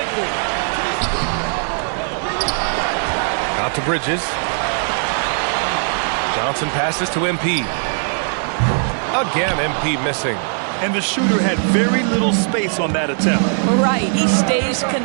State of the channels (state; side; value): silent; left; 63 dB below the other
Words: Out to Bridges. Johnson passes to MP. Again, MP missing. And the shooter had very little space on that attempt. Right, he stays